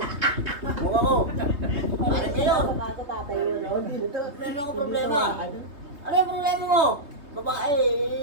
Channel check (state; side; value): late; left; 3.2 ms